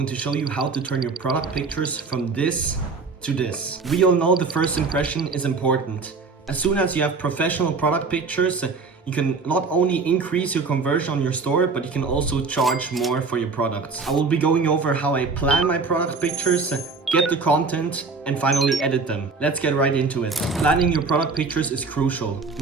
to show you how to turn your product pictures from this to this. We all know the first impression is important. As soon as you have professional product pictures, you can not only increase your conversion on your store, but you can also charge more for your products. I will be going over how I plan my product pictures, get the content, and finally edit them. Let's get right into it. Planning your product pictures is crucial.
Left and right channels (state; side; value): quieter; left; 4.4 dB